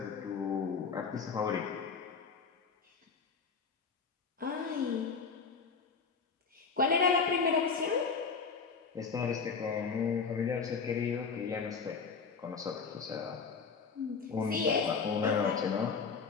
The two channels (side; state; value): right; quieter; 5.3 dB